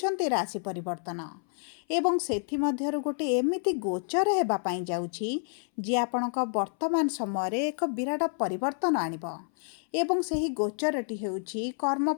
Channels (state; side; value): silent; right; 58 dB below the other